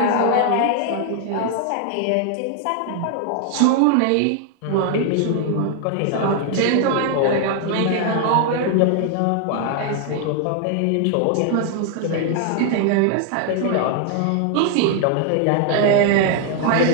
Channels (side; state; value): both; different; correlation 0.00